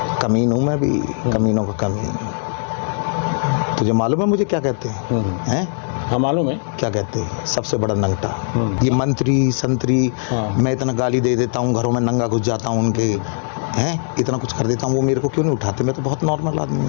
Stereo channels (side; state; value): right; silent; 66 dB below the other